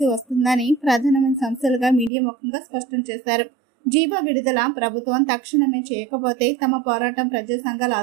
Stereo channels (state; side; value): drops out; left; at 2.1 s